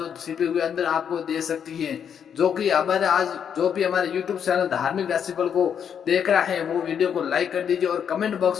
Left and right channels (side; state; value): right; quieter; 8.0 dB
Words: छिपे हुए अंदर आपको दे सकती है, जो कि हमारे आज जो भी हमारे YouTube चैनल धार्मिक राशिफल को देख रहा है वो वीडियो को लाइक कर दीजिए और कमेंट